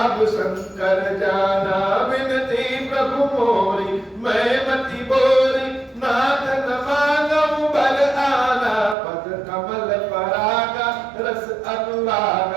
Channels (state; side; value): drops out; left; at 9.0 s